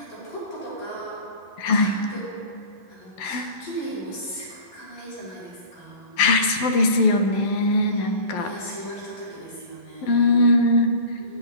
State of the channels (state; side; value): late; right; 11 ms